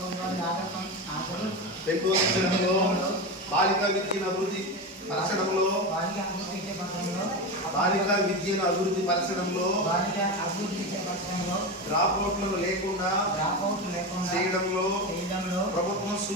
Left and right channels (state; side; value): normal; both; correlation 0.20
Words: బాలికా విద్యను అభివృద్ధి పరచడంలో డ్రాప్అవుట్లను లేకుండా చేయడంలో ప్రభుత్వం